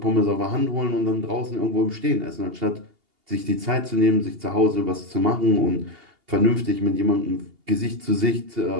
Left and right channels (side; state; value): left; late; 2.8 ms